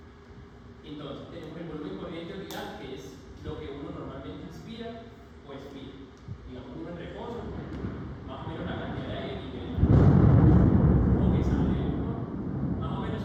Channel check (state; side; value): identical; both; correlation 1.00